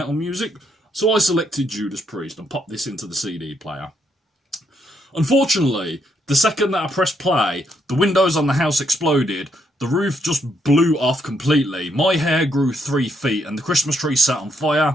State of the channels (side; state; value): both; normal; correlation 0.75